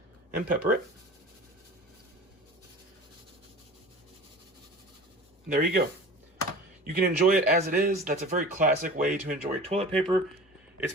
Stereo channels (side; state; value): both; normal; correlation 0.39